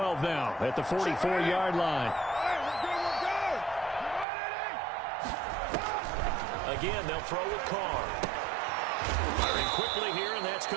now at the 44-yard line. Again, they'll throw with Carr. Firing quickly here, and that's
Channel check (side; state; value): left; drops out; at 4.2 s